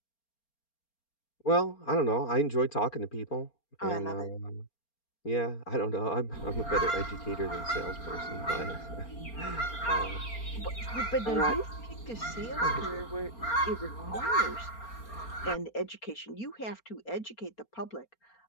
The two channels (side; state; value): right; late; 4.3 ms